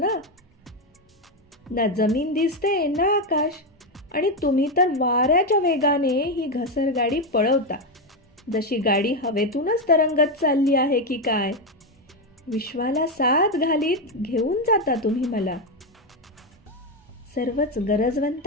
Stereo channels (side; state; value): both; normal; correlation 0.08